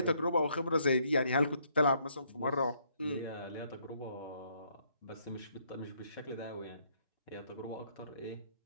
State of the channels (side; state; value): both; inverted; correlation -0.69